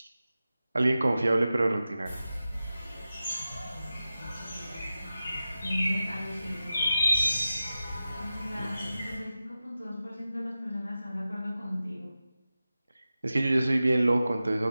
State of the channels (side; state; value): both; inverted; correlation -0.93